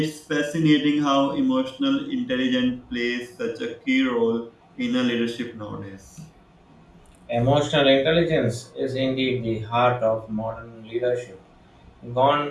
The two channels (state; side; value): identical; both; correlation 1.00